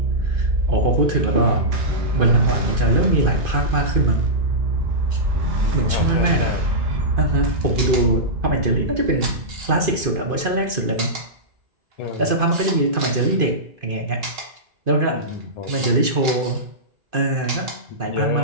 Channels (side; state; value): left; late; 2.5 ms